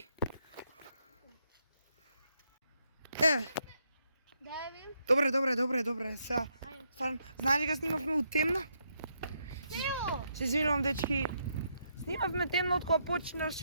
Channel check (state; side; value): inverted; both; correlation -0.78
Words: Дај ви. Добре. Сега, стварно, знаеш ли га снимавме у темно? Ево. Се извинувам, дечки. Снимавме темно од кога